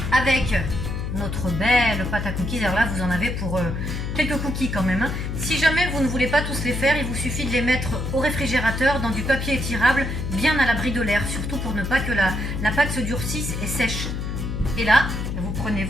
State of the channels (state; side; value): noise; left; hum, 4 dB below the sound